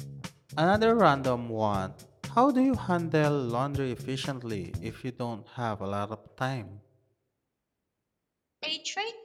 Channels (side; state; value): both; identical; correlation 1.00